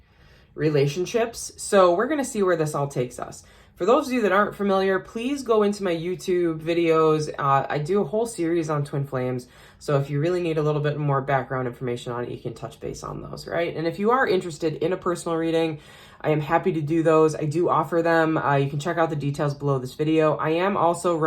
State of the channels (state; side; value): identical; both; correlation 1.00